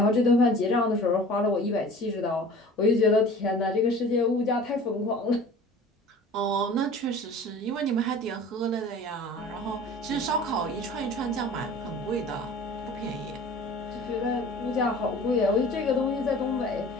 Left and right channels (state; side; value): normal; both; correlation 0.43